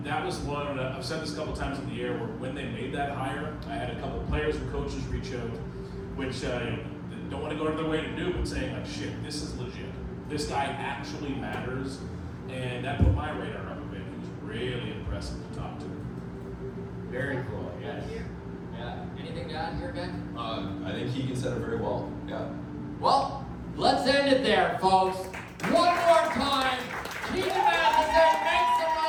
was one, I've said this a couple times in the air, where when they made that hire, I had a couple of players and coaches reach out, which don't want to go out of their way to do, but saying like, shit, this is legit. This guy actually matters. And that put my radar up a bit. He was really impressive to talk to. Very cool, yes. Yeah. Anything to add here, Ben? I think Keegan said it very well. Yeah. Well, let's end it there, folks. One more time. Keegan Matheson, make some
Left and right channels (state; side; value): identical; both; correlation 1.00